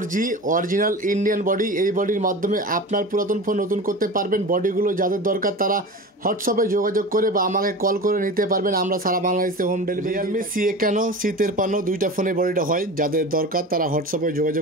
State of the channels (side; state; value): both; normal; correlation 0.32